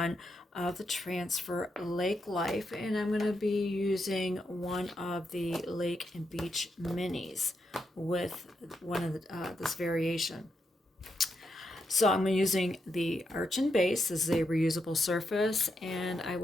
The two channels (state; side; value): normal; both; correlation 0.83